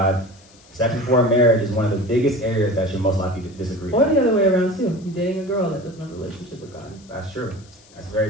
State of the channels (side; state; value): left; noise; hiss, 27 dB below the sound